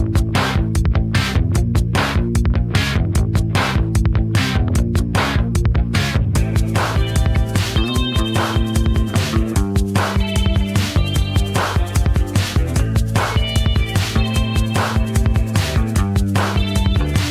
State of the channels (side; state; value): both; identical; correlation 1.00